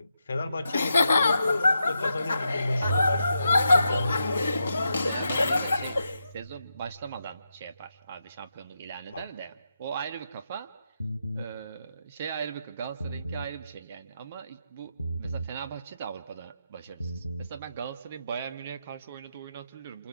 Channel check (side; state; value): both; inverted; correlation -0.85